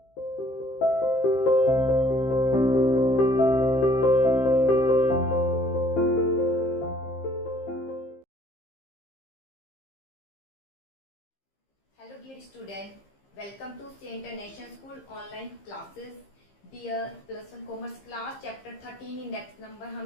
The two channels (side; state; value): right; late; 15 ms